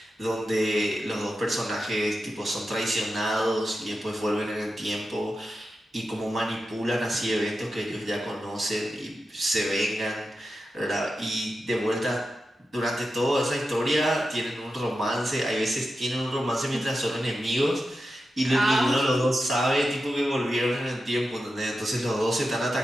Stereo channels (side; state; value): both; normal; correlation 0.90